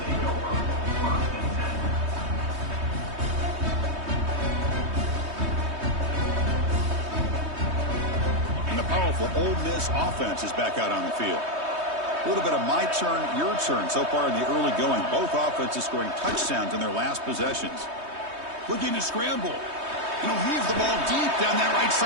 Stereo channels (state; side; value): late; left; 3.2 ms